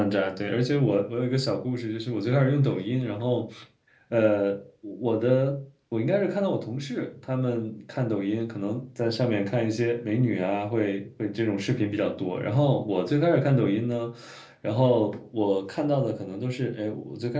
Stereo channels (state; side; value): identical; both; correlation 1.00